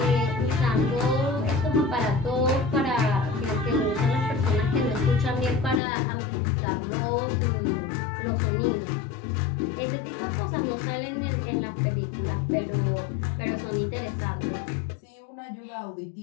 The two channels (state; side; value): drops out; right; at 5.8 s